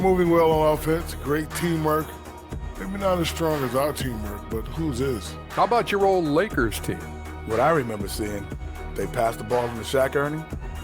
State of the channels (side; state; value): both; identical; correlation 1.00